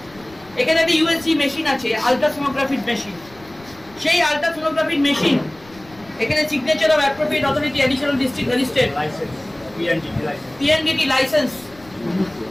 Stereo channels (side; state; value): left; noise; rumble, 25 dB below the sound